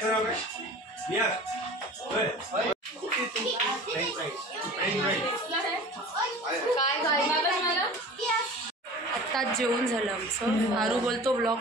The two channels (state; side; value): normal; both; correlation 0.40